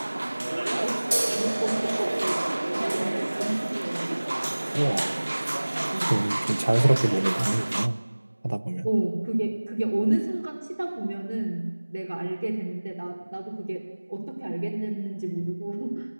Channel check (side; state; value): both; inverted; correlation -1.00